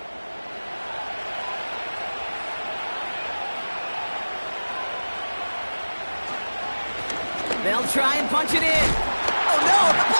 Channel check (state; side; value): inverted; both; correlation -1.00